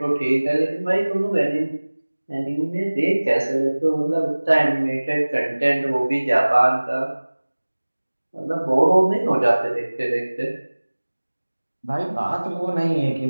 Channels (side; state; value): both; inverted; correlation -1.00